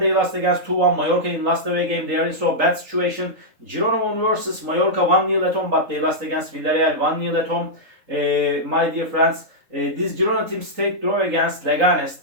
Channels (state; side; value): late; left; 3.7 ms